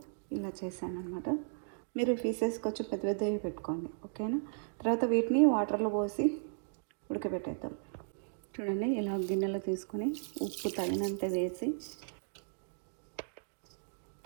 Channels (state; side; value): silent; left; digital silence